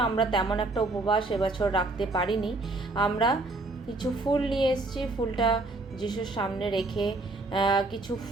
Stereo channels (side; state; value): left; quieter; 3.1 dB